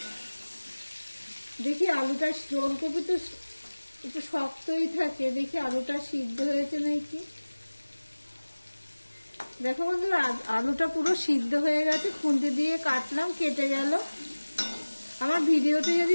দেখি আলুটা, ওলকপি তো একটু শক্তই থাকে, দেখি আলুটা সিদ্ধ হয়েছে নাকি। দেখো বন্ধুরা, আলুটা পুরো সিদ্ধ হয়ে গেছে। খুন্তি দিয়ে কাটলাম, কেটে গেল। আমার ভিডিওটি যদি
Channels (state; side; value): inverted; both; correlation -1.00